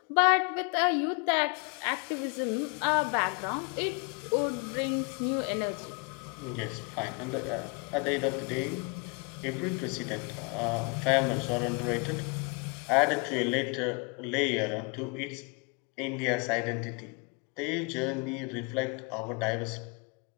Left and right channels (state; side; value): quieter; right; 32.4 dB